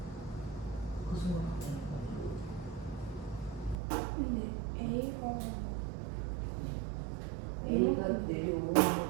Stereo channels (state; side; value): drops out; left; at 3.8 s